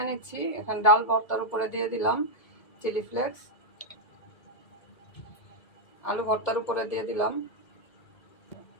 নিচ্ছি। এখন ডাল ভর্তার উপরে দিয়ে দিলাম চিলি ফ্লেক্স, আলু ভর্তার উপরে দিয়ে দিলাম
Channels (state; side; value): late; right; 1.9 ms